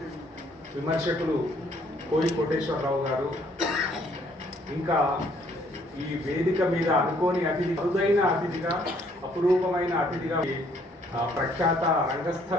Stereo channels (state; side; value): normal; both; correlation 0.64